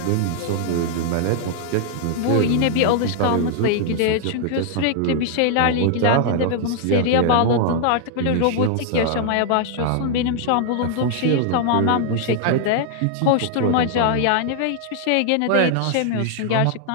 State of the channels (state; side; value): different; both; correlation 0.00